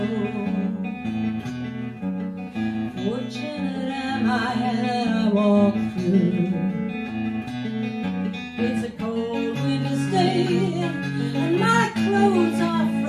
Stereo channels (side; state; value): both; identical; correlation 1.00